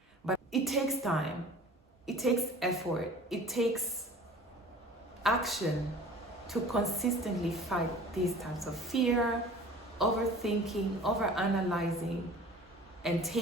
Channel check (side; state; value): both; normal; correlation 0.44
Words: but it takes time. It takes effort. It takes action to consistently fight these types of fear, overthinking, overanalyzing, and